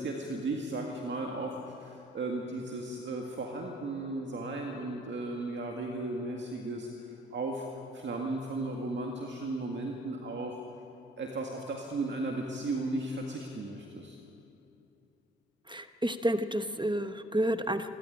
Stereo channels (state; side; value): normal; both; correlation 0.58